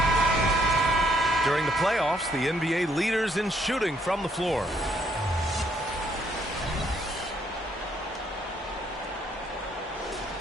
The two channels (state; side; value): normal; both; correlation 0.70